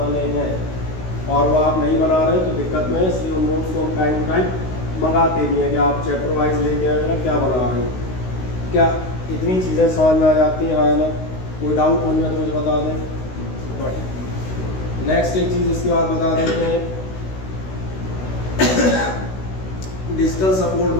हैं, और वो आप नहीं बना रहे तो दिक्कत में है, इसलिए उन नोट्स को हम टाइम टू टाइम मंगाते भी हैं कि आप चैप्टर वाइज लेके आएगा क्या बना रहे हो, क्या इतनी चीज़ें समझ में आ जाती हैं, हाँ ना। कोई डाउट होंगे तो मुझे बता दें। नेक्स्ट एक चीज़ इसके बाद बता देते हैं digital support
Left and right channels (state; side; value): late; right; 16 ms